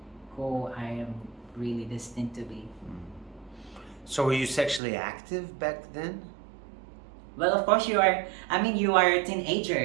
who I am really destined to be. So were you sexually active back then? Well, of course you are. You are a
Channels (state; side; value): drops out; left; at 4.8 s